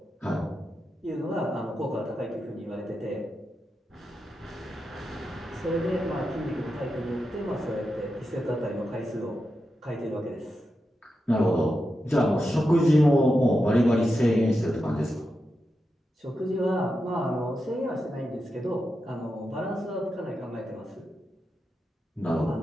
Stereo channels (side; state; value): both; normal; correlation 0.88